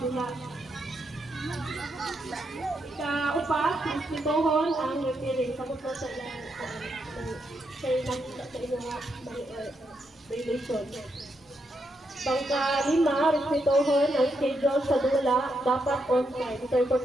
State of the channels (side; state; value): both; normal; correlation 0.81